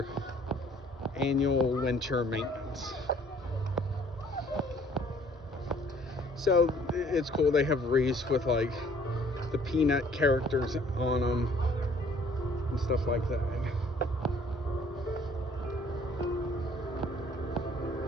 annual winter maintenance. So it's cool. They have wreaths with like the Peanut characters on them and stuff like that.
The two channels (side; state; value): both; normal; correlation 0.58